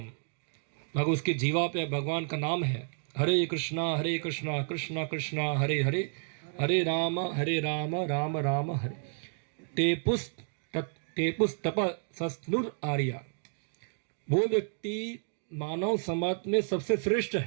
मगर उसके जीवा पे भगवान का नाम है। हरे कृष्णा कृष्णा कृष्णा हरे हरे, हरे राम राम राम हरे। टेपुस तप सस्नुर आर्या, वो व्यक्ति मानव समाज में सबसे श्रेष्ठ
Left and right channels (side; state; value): left; silent; digital silence